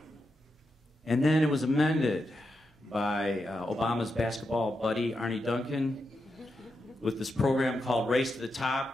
And then it was amended by Obama's basketball buddy, Arnie Duncan, with this program called Race to the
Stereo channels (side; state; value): both; normal; correlation 0.86